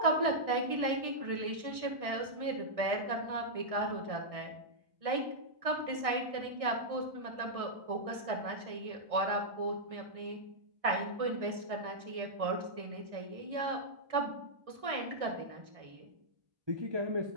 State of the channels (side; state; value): left; late; 1.6 ms